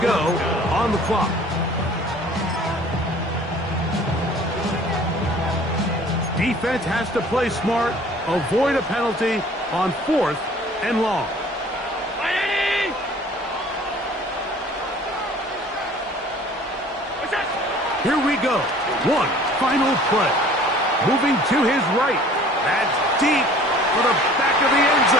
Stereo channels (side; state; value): both; normal; correlation 0.50